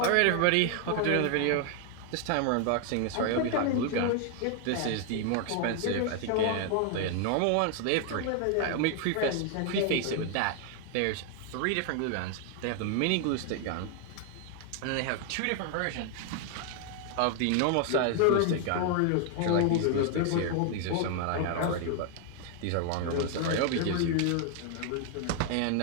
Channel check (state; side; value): different; both; correlation 0.00